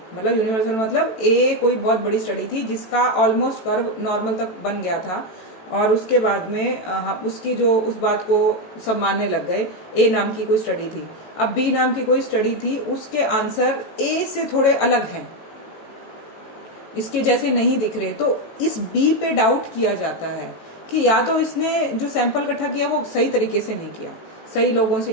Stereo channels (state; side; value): late; right; 18 ms